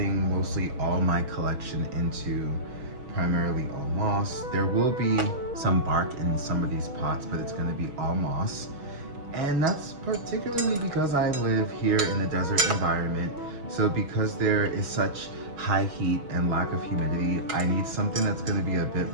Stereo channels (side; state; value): left; late; 6.3 ms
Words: mostly all my collection into primarily all moss. There will be some bark in some of these pots, but it's going to be all moss. And that's particularly because I live here in a desert environment. So because there is such high heat and lack of humidity, I need something that's going to be a bit